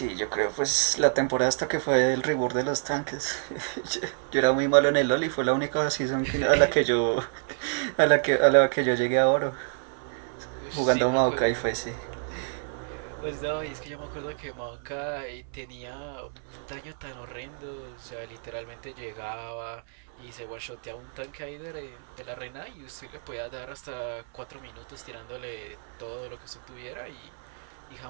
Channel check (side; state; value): left; silent; 59 dB below the other